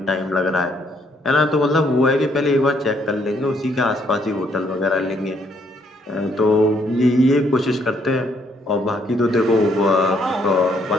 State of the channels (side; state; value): both; normal; correlation 0.69